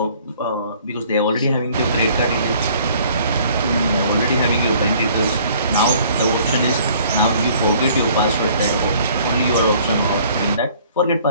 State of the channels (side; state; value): both; inverted; correlation -0.56